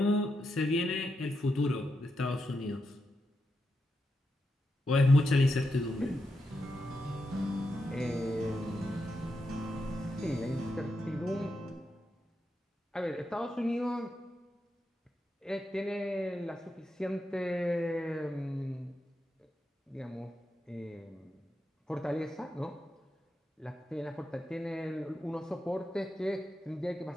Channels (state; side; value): normal; both; correlation 0.86